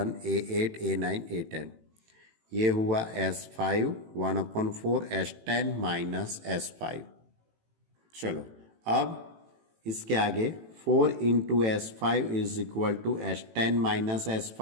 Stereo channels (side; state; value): left; late; 18 ms